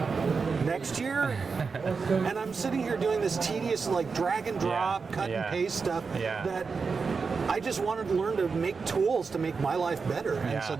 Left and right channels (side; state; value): left; quieter; 5.0 dB